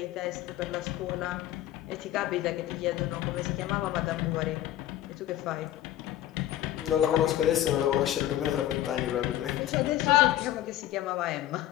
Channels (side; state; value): right; quieter; 13.2 dB